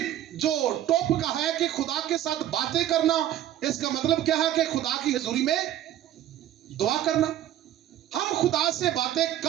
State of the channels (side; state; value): left; quieter; 12.2 dB